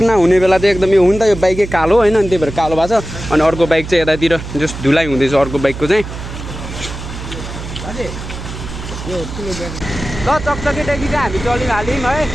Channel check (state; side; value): noise; right; hum, 9 dB below the sound